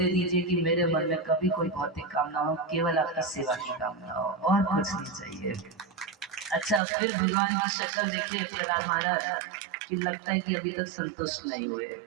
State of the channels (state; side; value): drops out; left; at 6.8 s